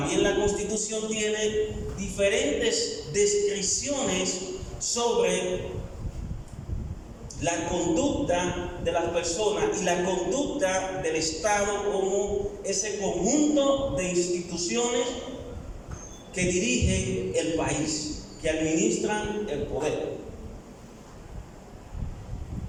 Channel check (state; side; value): identical; both; correlation 1.00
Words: la Constitución tiene diferentes descripciones sobre la conducta de las personas y la conducta del Estado como ese conjunto de instituciones que dirigen el país, que administran el poder.